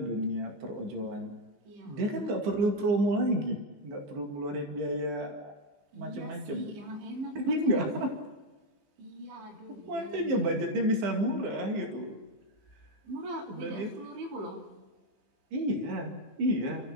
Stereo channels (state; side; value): late; left; 15 ms